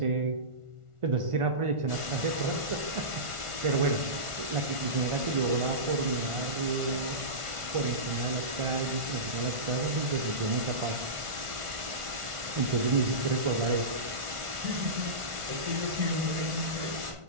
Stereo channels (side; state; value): left; late; 1.4 ms